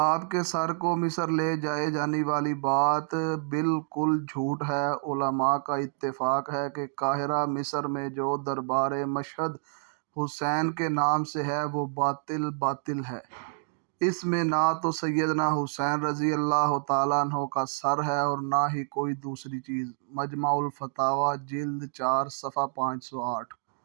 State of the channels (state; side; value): silent; left; digital silence